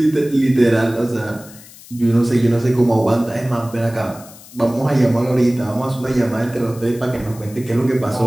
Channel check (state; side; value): noise; left; hiss, 20 dB below the sound